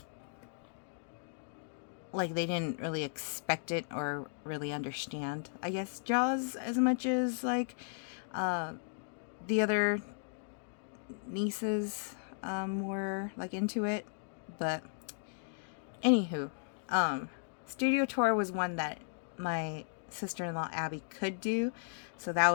like they didn't really expect it or really understand, I guess, Jaws as much as like the other nieces were like into it. But anywho, studio tour was one that my sister-in-law Abby could do, so that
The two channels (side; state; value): right; silent; digital silence